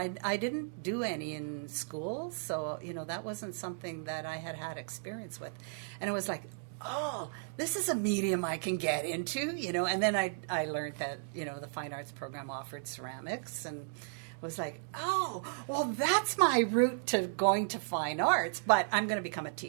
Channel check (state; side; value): silent; left; digital silence